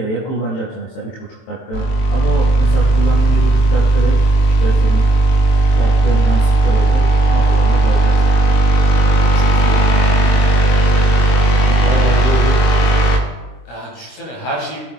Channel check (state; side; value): late; right; 23 ms